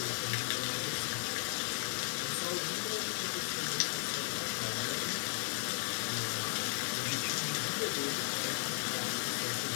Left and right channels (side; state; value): right; silent; 54 dB below the other